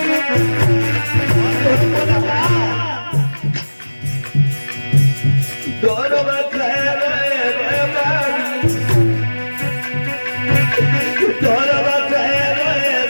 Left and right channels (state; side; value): inverted; both; correlation -1.00